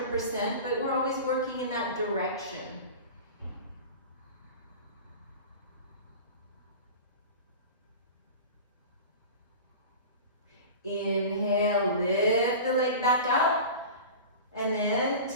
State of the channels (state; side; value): inverted; both; correlation -0.34